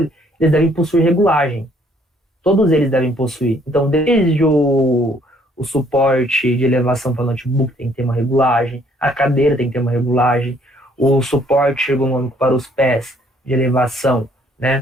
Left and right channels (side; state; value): both; normal; correlation 0.64